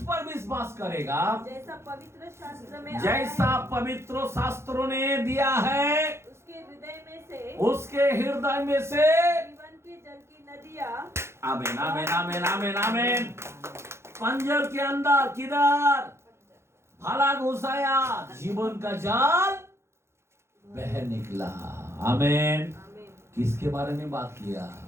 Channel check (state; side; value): late; left; 0.13 ms